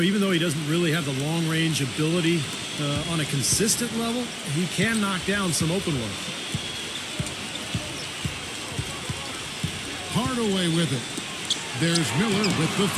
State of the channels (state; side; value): identical; both; correlation 1.00